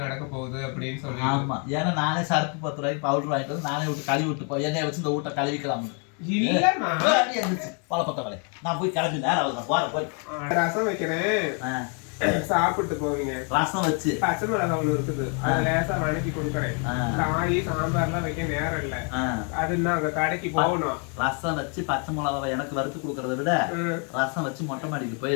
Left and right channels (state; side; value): quieter; right; 38.7 dB